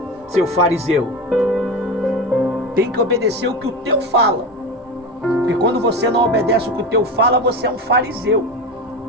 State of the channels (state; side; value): normal; both; correlation 0.23